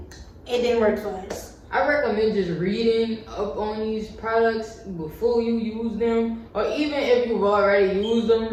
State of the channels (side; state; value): both; identical; correlation 1.00